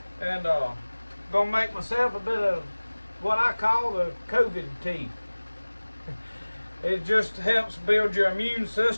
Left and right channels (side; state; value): both; inverted; correlation -1.00